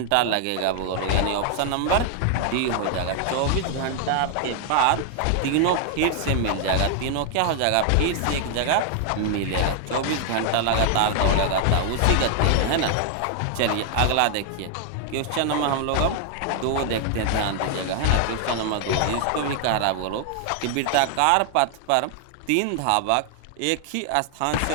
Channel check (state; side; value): different; both; correlation 0.00